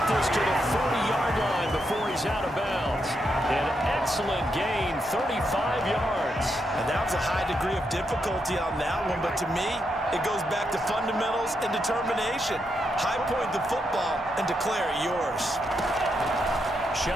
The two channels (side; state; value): both; normal; correlation 0.82